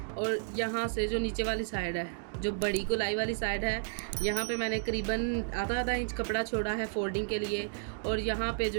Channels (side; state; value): left; silent; digital silence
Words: और यहाँ से जो नीचे वाली साइड है, जो बड़ी गोलाई वाली साइड है, यहाँ पे मैंने करीबन आधा इंच कपड़ा छोड़ा है फोल्डिंग के लिए। और यहाँ पे